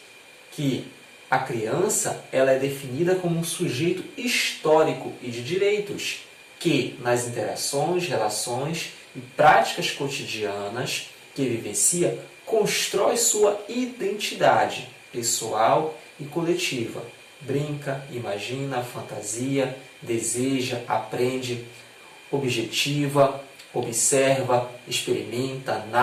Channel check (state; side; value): identical; both; correlation 1.00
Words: que a criança ela é definida como um sujeito histórico e de direitos, que nas interações, relações e práticas cotidianas que vivencia, constrói sua identidade pessoal e coletiva. Brinca, imagina, fantasia, deseja, aprende, objetiva, observa, experimenta,